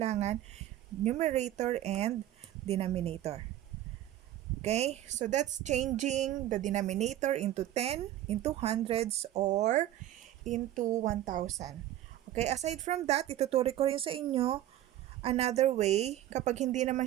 numerator and denominator. Okay? So, that's changing the denominator into 10, into hundreds, or into 1,000. Okay? Aside from that, ituturo ko rin sa inyo another way. Kapag hindi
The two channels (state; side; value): quieter; left; 13.2 dB